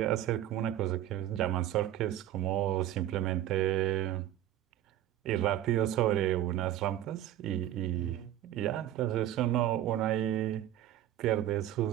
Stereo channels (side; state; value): left; quieter; 12.7 dB